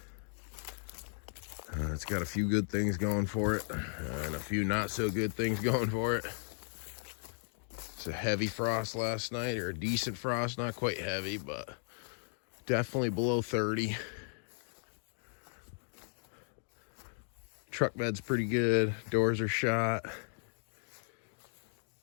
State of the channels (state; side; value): silent; right; 54 dB below the other